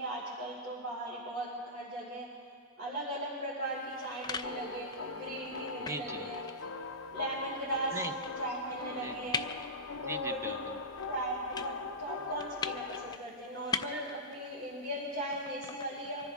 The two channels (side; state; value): both; normal; correlation -0.16